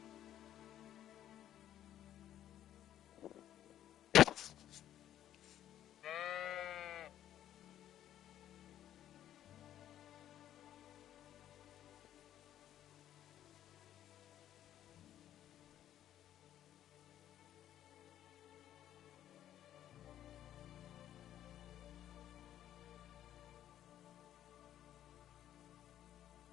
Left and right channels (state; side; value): quieter; right; 11.5 dB